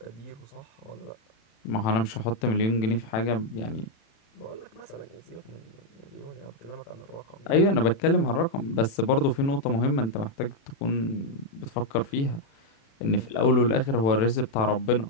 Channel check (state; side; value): late; right; 36 ms